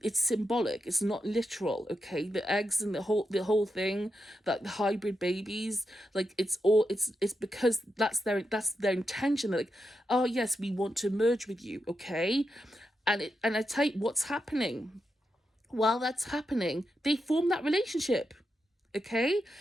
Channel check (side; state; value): both; normal; correlation 0.86